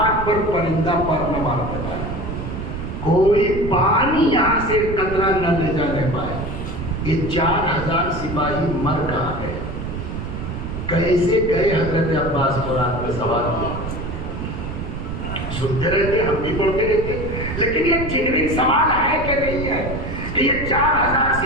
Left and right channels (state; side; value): noise; right; rumble, 6 dB below the sound